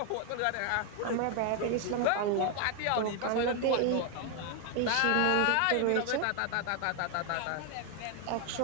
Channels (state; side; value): different; both; correlation 0.01